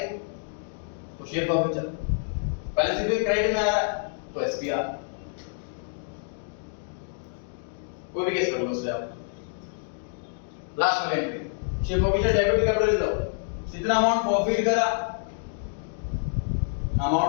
तो शेयर प्रॉफिट चल, बैलेंसिंग फिगर क्रेडिट में आ रहा है तो एसपीआर। कोई भी केस कर लो उससे आप। लास्ट वाली entry share profit debit capital reserve, जितना अमाउंट प्रॉफिट करा,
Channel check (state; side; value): silent; right; digital silence